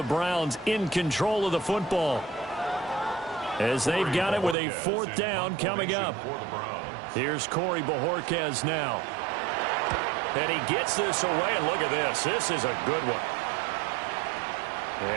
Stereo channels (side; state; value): left; drops out; at 4.5 s